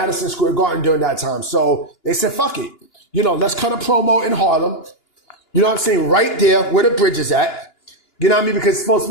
Square Garden during that time. So they said, fuck it. You know, let's cut a promo in Harlem. You know what I'm saying? Right there where the bridge is at. You know what I mean? Because it's supposed to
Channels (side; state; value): right; late; 2.9 ms